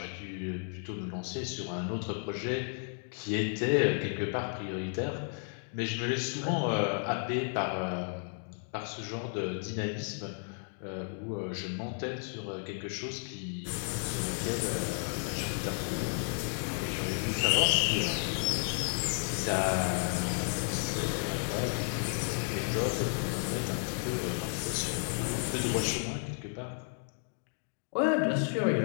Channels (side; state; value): right; silent; 56 dB below the other